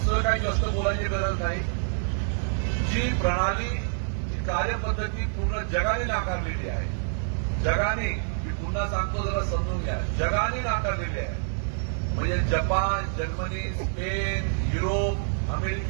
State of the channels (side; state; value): left; silent; digital silence